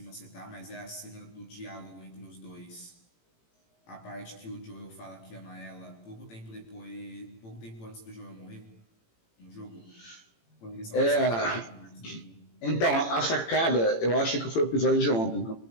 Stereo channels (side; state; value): right; late; 18 ms